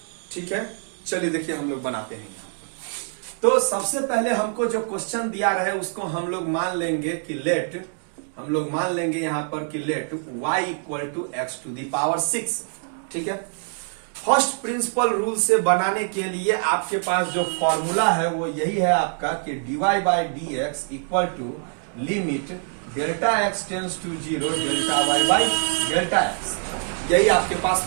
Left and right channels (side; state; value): left; silent; 62 dB below the other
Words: ठीक है, चलिए देखिए हम लोग बनाते हैं यहाँ। तो सबसे पहले हमको जो क्वेश्चन दिया रहे उसको हम लोग मान लेंगे कि यहां पर कि let y equal to x to the power 6। ठीक है, फर्स्ट प्रिंसिपल रूल से बनाने के लिए आपके पास जो फॉर्मूला है वो यही है आपका कि dy by D x equal to limit delta x tends to 0 delta y by delta x, यही आपके पास